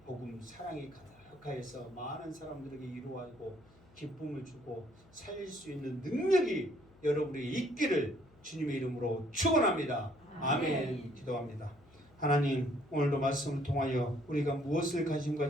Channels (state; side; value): noise; left; hum, 27 dB below the sound